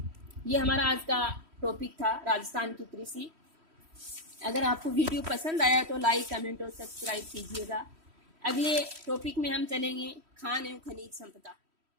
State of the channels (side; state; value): left; late; 3.1 ms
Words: ये हमारा आज का टॉपिक था, राजस्थान की कृषि। अगर आपको वीडियो पसंद आया तो लाइक, कमेंट और सब्सक्राइब कीजिएगा। अगले टॉपिक में हम चलेंगे खान एवं खनिज संपदा।